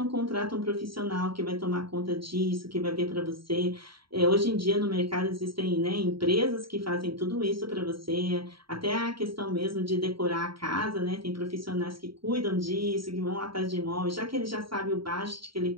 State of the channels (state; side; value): late; left; 0.74 ms